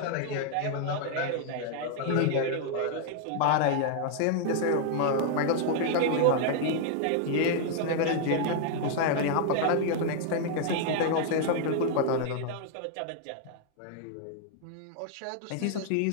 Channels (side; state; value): both; different; correlation 0.00